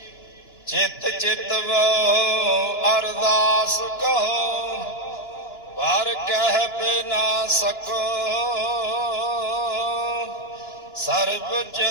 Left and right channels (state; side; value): late; right; 2.9 ms